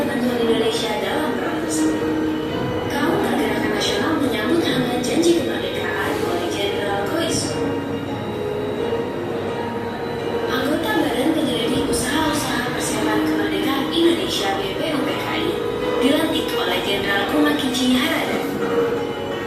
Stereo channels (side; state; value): both; identical; correlation 1.00